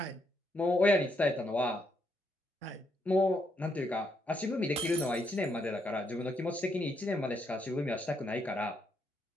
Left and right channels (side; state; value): both; normal; correlation 0.76